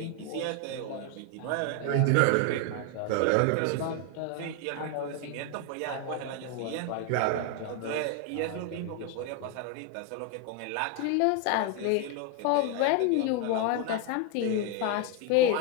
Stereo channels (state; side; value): different; both; correlation 0.01